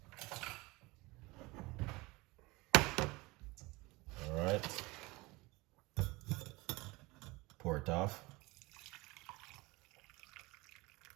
All right. Pour it off.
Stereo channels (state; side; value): quieter; left; 23.0 dB